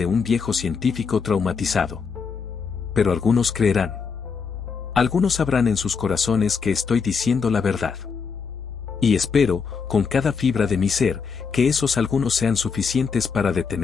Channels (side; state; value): right; quieter; 5.6 dB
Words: un viejo científico traumatizado. Pero algunos creerán. Algunos sabrán en sus corazones que estoy diciendo la verdad. Y espero, con cada fibra de mi ser, que esos algunos sean suficientes para